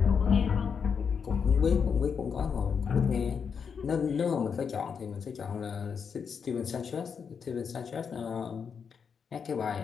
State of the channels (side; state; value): right; quieter; 6.5 dB